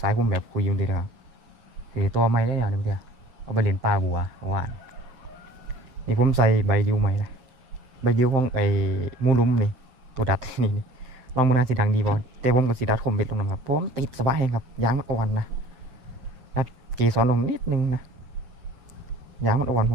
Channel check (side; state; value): left; late; 7.7 ms